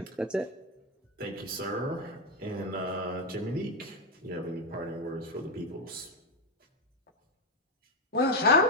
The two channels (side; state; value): both; normal; correlation 0.06